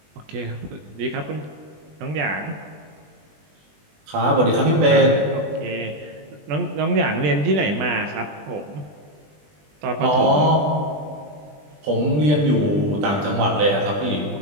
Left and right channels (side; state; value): left; late; 20 ms